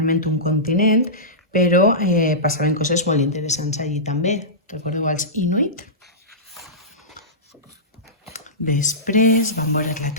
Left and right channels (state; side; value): normal; both; correlation -0.17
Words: un continent, però passaven coses molt interessants allí també. Recordeu els Inuit? Després vam veure la